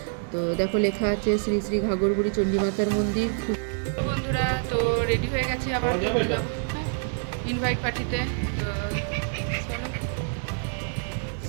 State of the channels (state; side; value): silent; left; 57 dB below the other